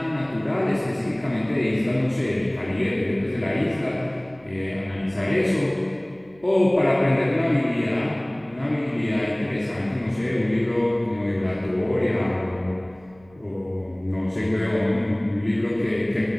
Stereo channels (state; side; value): noise; right; hum, 28 dB below the sound